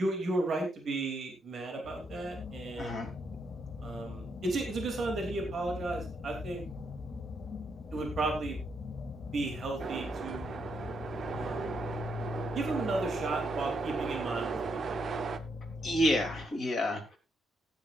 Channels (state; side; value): normal; both; correlation 0.78